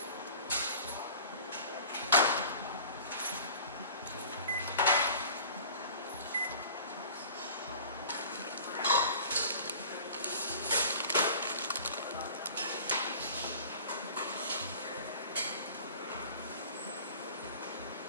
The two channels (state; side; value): inverted; both; correlation -0.43